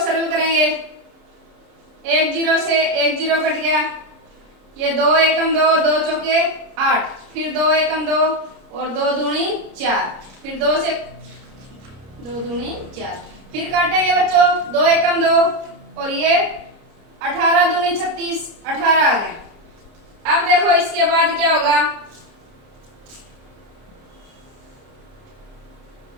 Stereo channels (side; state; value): left; late; 30 ms